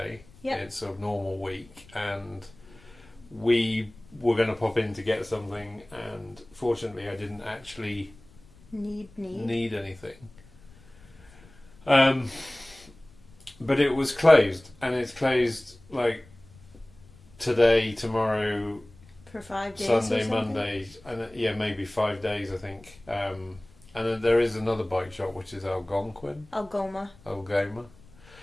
Yep. It's a normal week. And we were going to pop in to get something. And fortunately I didn't actually need anything. But it was closed. And it's closed like today, tomorrow, For 5 days. Sunday, or something? Monday, and yeah, maybe 5 days, I think. And then there is another bike shop, which is Algonquin. Algoma.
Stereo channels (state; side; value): noise; left; rumble, 25 dB below the sound